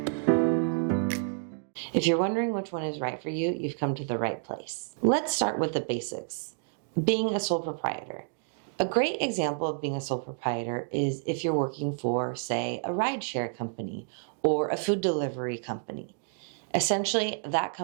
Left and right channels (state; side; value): silent; left; 58 dB below the other